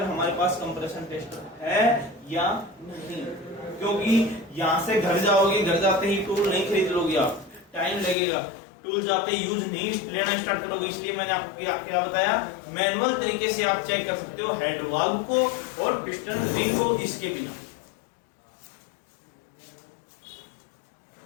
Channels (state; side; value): drops out; right; at 8.2 s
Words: हमारे पास कंप्रेशन टेस्टर है या नहीं। क्योंकि यहाँ से घर जाओगे, घर जाते ही टूल नहीं खरीद लोगे आप, टाइम लगेगा, टूल जाते ही यूज नहीं लेना स्टार्ट करोगे। इसलिए मैंने आपको क्या बताया, मैनुअल तरीके से आप चेक कर सकते हो हेड वाल्व को और पिस्टन रिंग को इसके बिना।